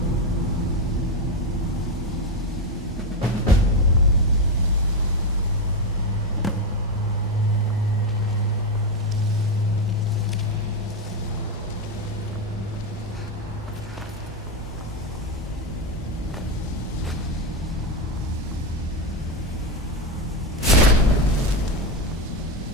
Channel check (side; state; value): both; normal; correlation 0.10